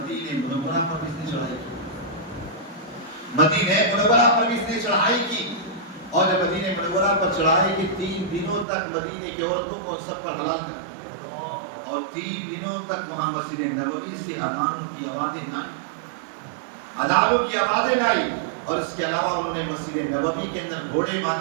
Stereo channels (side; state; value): left; drops out; at 8.7 s